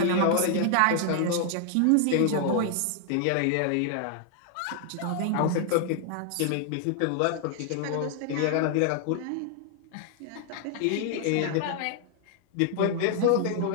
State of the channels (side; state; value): both; different; correlation 0.00